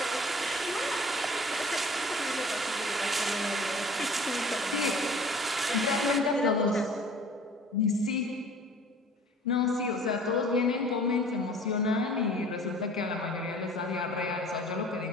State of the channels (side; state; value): both; normal; correlation 0.48